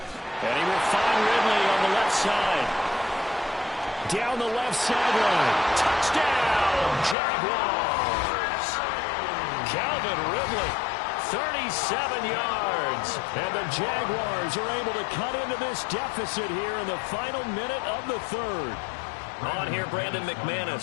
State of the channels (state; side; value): drops out; right; at 7.2 s